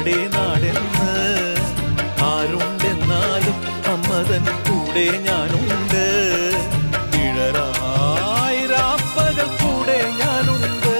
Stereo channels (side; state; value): both; inverted; correlation -1.00